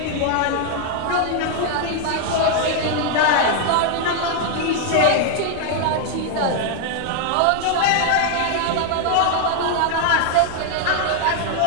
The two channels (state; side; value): different; both; correlation 0.00